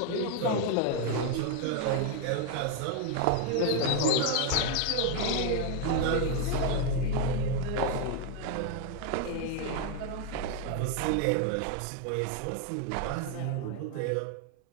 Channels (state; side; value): different; both; correlation 0.01